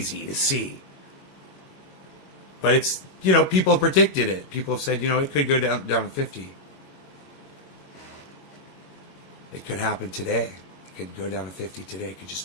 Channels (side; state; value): right; late; 21 ms